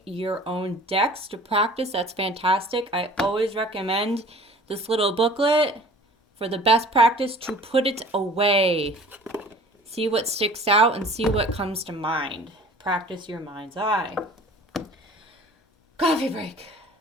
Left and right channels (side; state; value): both; normal; correlation 0.47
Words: your own decks to practice. That's fantastic. I always recommend this little booklet for the best practice to put it away. See what sticks out and see what comes to mind. Practice your mind's eye. Coffee break.